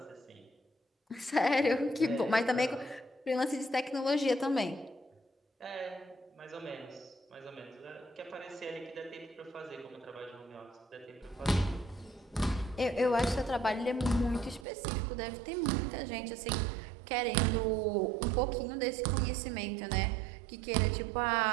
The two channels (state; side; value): drops out; left; at 14.7 s